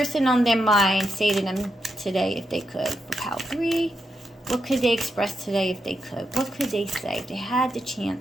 on their mind say to them today if they could? For pile 3, what could they express today if they could? What could they say if they had the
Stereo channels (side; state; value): both; normal; correlation 0.84